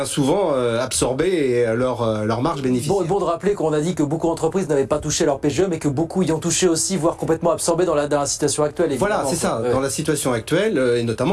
souvent absorber leur marge bénéficiaire. Bon de rappeler qu'on a dit que beaucoup d'entreprises n'avaient pas touché leur PGE, mais que beaucoup y ont touché aussi, voire complètement absorbé dans la situation actuelle. Voilà, c'est ça. Dans la situation actuelle, et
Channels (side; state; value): both; identical; correlation 1.00